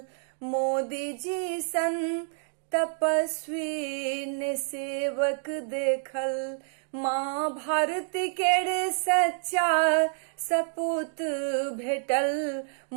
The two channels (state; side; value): silent; left; digital silence